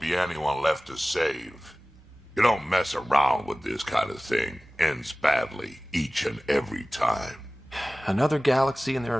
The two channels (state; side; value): normal; both; correlation 0.98